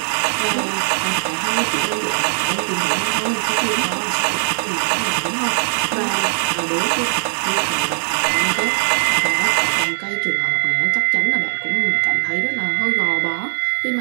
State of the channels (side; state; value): left; silent; 61 dB below the other